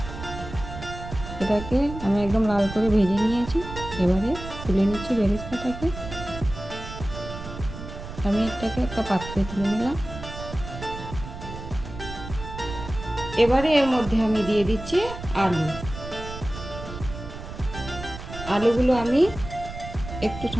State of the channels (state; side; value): noise; right; rumble, 10 dB below the sound